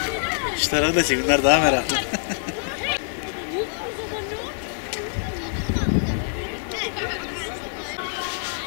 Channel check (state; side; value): silent; right; digital silence